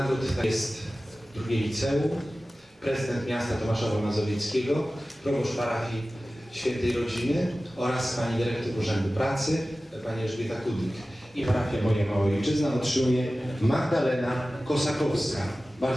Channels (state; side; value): normal; both; correlation 0.96